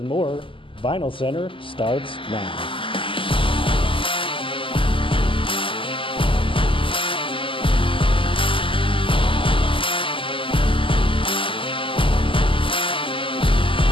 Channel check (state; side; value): late; right; 0.25 ms